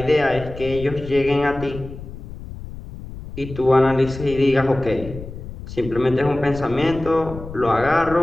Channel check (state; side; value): noise; left; rumble, 13 dB below the sound